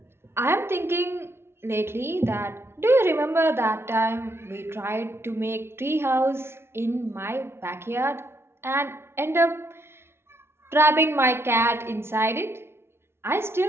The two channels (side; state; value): left; late; 0.12 ms